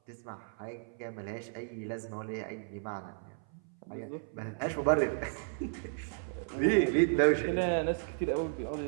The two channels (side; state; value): left; silent; 55 dB below the other